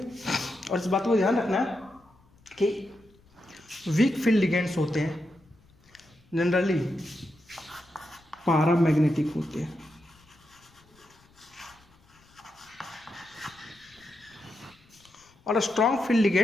इस बात को ध्यान रखना है कि वीक फील्ड लिगेंड्स होते हैं जनरली पैरामैग्नेटिक होते हैं, और स्ट्रॉन्ग फील्ड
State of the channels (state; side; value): noise; left; rumble, 30 dB below the sound